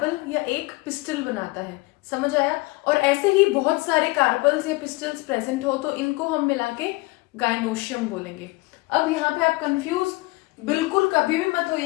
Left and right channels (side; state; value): right; quieter; 23.4 dB